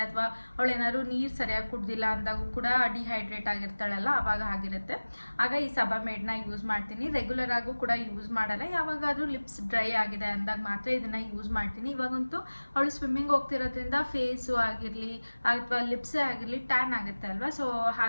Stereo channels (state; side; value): inverted; both; correlation -1.00